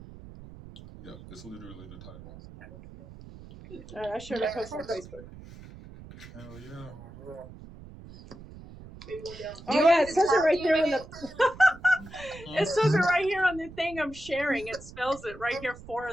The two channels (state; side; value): noise; right; rumble, 17 dB below the sound